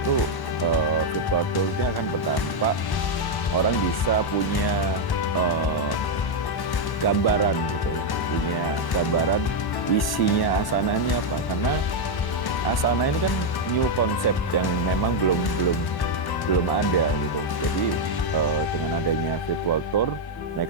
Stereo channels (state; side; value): late; right; 1.1 ms